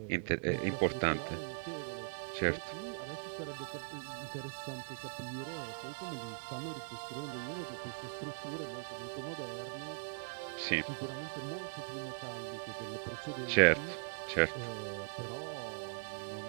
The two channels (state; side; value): silent; left; digital silence